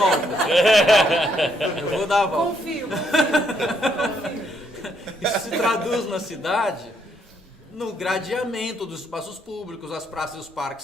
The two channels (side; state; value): both; normal; correlation 0.73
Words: Eu vou dar a volta. Confio. Isso se traduz na cidade no gradeamento dos espaços públicos. As praças e os